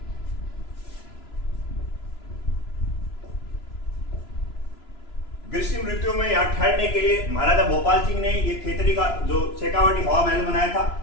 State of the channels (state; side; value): late; right; 3.0 ms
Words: ग्रीष्म ऋतु में यहां ठहरने के लिए महाराजा भोपाल सिंह ने ये खेतड़ी का जो शेखावाटी हवा महल बनाया था।